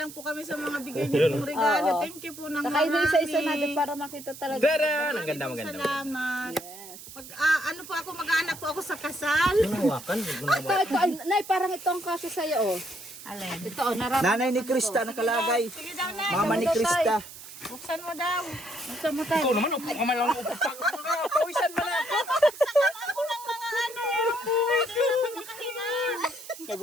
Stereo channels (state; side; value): noise; right; hiss, 15 dB below the sound